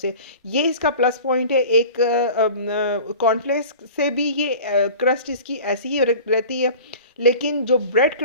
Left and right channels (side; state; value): both; inverted; correlation -0.40